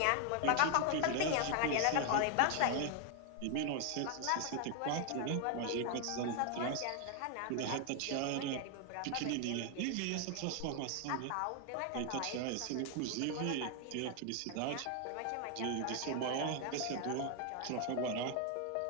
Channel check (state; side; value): different; both; correlation 0.00